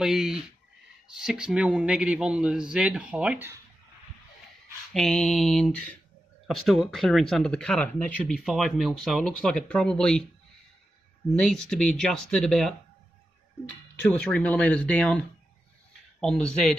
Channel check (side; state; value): both; normal; correlation 0.90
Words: 6mm negative on the Z height, and I've still got clearance under the cutter, and that should be 5mm, so it looks like it probably needs to be adjusted about 2 or 3mm down on the